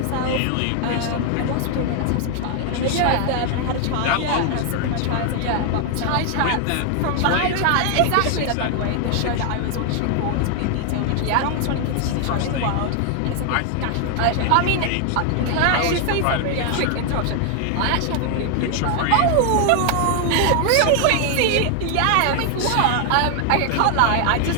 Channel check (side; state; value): both; different; correlation 0.00